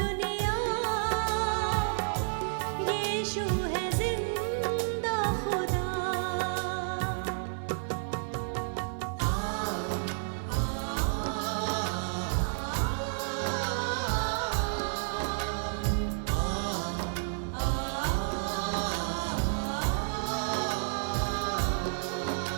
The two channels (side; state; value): left; silent; digital silence